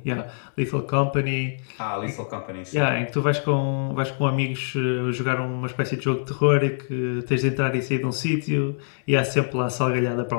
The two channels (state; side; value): silent; right; digital silence